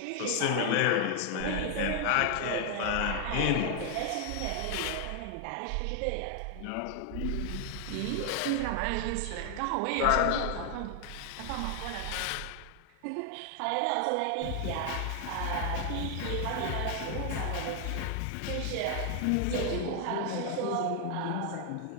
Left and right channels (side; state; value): both; different; correlation 0.00